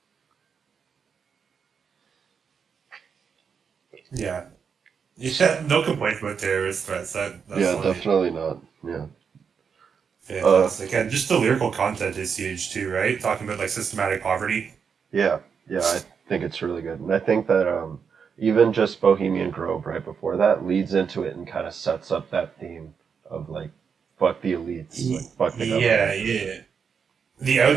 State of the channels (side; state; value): left; quieter; 6.4 dB